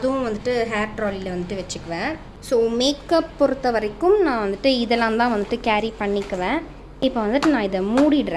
வந்துட்டு ஹேர் ட்ராலியில் வந்துட்டு வச்சுக்குவேன். ஸோ மேக்கப் பொறுத்த வரைக்கும் நான் வந்துட்டு இதெல்லாம் தான் வந்துட்டு கேரி பண்ணிக்குவேன். இப்போ வந்துட்டு நான் இதை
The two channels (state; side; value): identical; both; correlation 1.00